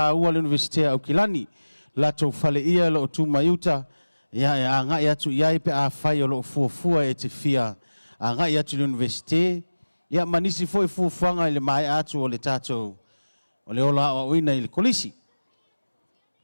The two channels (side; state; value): both; inverted; correlation -1.00